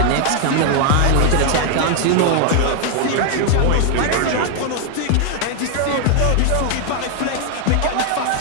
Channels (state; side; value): different; both; correlation 0.00